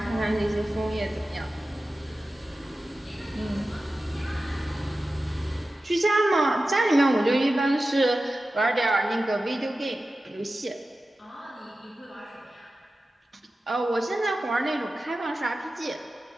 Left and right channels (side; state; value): both; normal; correlation 0.94